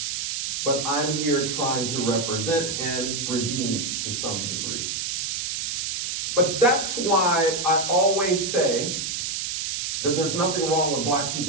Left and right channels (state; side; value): noise; right; hiss, 2 dB below the sound